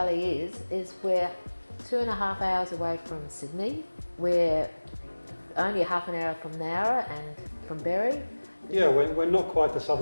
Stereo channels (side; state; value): both; inverted; correlation -1.00